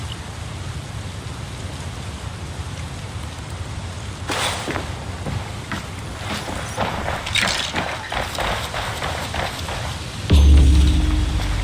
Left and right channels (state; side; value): identical; both; correlation 1.00